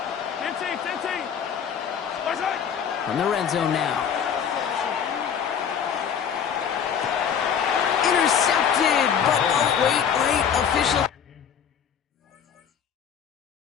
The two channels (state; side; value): quieter; right; 7.8 dB